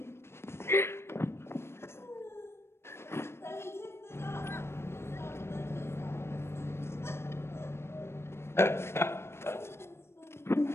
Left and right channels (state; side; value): late; right; 0.12 ms